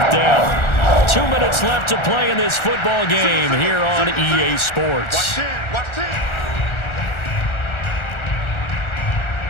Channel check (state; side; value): late; right; 1.4 ms